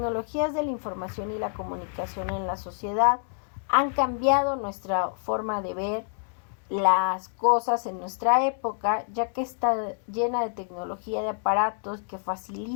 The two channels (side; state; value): right; silent; digital silence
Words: de la información y la comunicación en la sociedad han cambiado nuestra forma de ver las cosas en nuestra época, ya que está llena de tecnología, de aparatos que